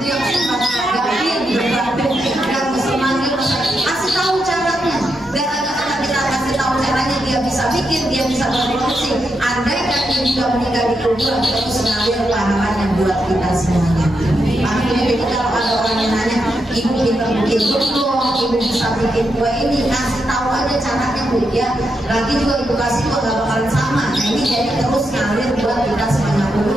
yang gampang yang mesti lagi kasih tahu caranya. Gara-gara kita kasih tahu caranya dia bisa bikin, dia bisa berproduksi. Andai kan dia juga meninggal di kuburan, itu sengaja pahalanya buat kita semuanya. Makanya jadi kalau ada orang yang nanya, ibu kita bikin dong, ibu bisa bikin kue ini, kasih tahu aja caranya Bu ya. Lagi juga ibu kasih kok gak bakalan sama. Nah ini jadi terus ngalir buat kita sebanyak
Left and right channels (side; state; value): both; normal; correlation 0.84